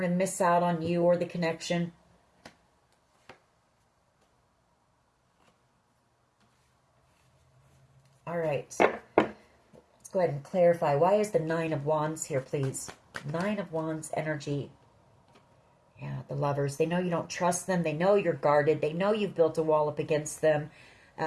to miss out on you or the connection. All right. Let's go ahead and clarify. Why is the Nine of Wands here, please? Nine of Wands energy. Yeah, the Lovers. They know you don't trust them. They know you're guarded. They know you've built a wall up against them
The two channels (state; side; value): identical; both; correlation 1.00